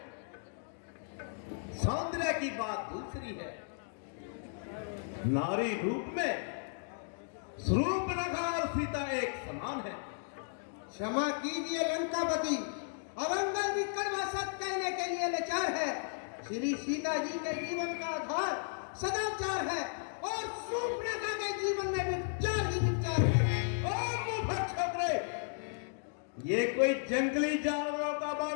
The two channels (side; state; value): right; silent; digital silence